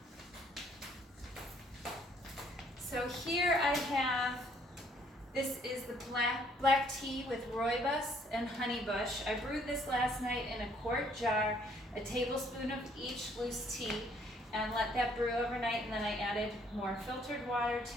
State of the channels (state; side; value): normal; both; correlation 0.64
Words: So here I have, this is the black tea with rooibos and honeybush. I brewed this last night in a quart jar, a tablespoon of each loose tea, and let that brew overnight, and then I added more filtered water